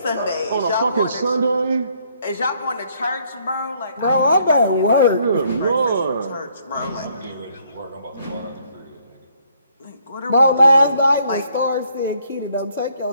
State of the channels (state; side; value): inverted; both; correlation -0.68